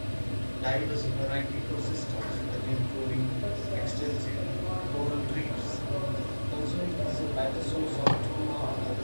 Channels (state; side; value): inverted; both; correlation -1.00